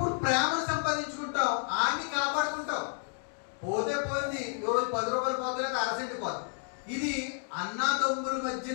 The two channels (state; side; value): silent; right; 57 dB below the other